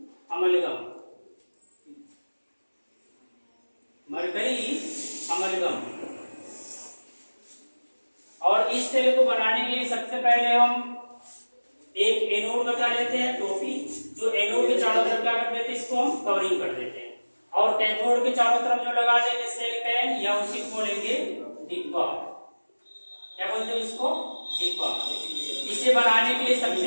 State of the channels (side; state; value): both; inverted; correlation -1.00